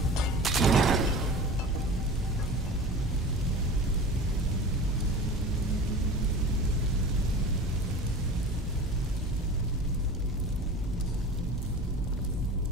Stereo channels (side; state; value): both; normal; correlation 0.36